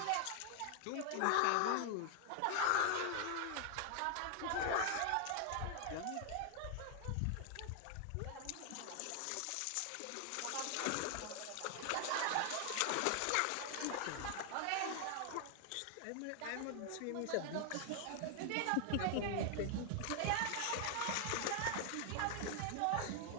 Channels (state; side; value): different; both; correlation 0.00